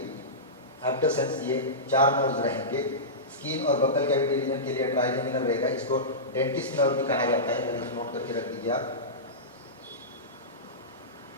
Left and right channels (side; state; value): both; normal; correlation -0.18